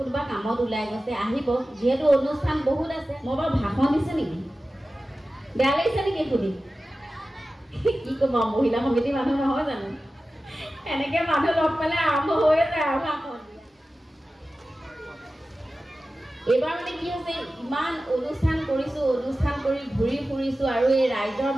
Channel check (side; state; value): both; normal; correlation 0.95